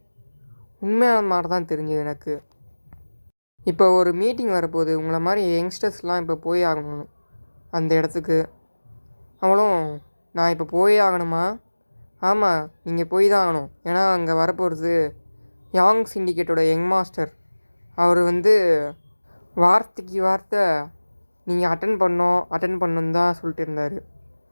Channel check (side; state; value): both; inverted; correlation -1.00